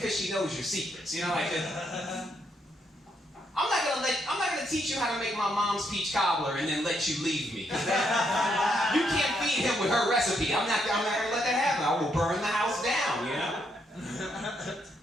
she knows your secrets. You know, like I'm not gonna teach you how to make my mom's peach cobbler and then let you leave me. You can't feed him with her recipe. I'm not gonna let that happen. I will burn the house down. You know.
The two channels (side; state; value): both; normal; correlation 0.76